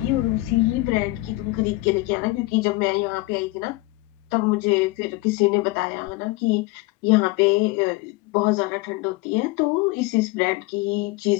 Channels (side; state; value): right; quieter; 20.8 dB